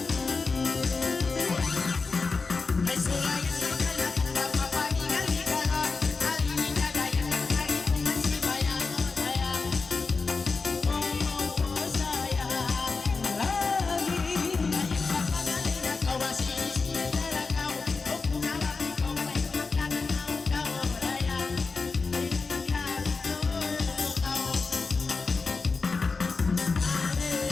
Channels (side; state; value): right; quieter; 4.3 dB